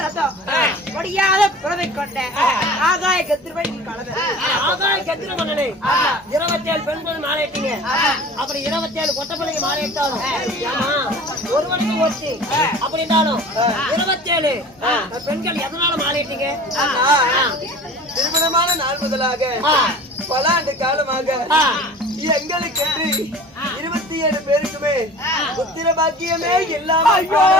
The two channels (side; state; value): both; normal; correlation 0.41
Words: ரத்தம் ஒடியாத புறவை கொண்ட ஆகாய கத்திரவழி கலந்த ஆகாய கத்திர பண்ணனே 27 பெண்கள் மாலையிட்டீங்க. அப்படி 27 கொட்ட பிள்ளைங்க மாலையிட்டாலும் ஏமா ஒருவனுக்கு ஒருத்தி அப்படின்னாலும் 27 பெண்கள் எதனால மாலையிட்டீங்க? திருமணமான நாள் முதலாக பல ஆண்டு காலமாக எங்களுக்கென்று 27 பேருக்குமே புத்திர பாக்கியமே இல்லாமல்